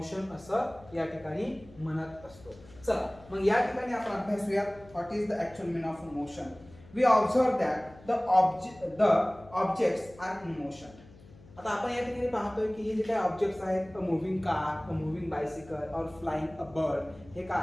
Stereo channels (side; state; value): left; noise; hum, 22 dB below the sound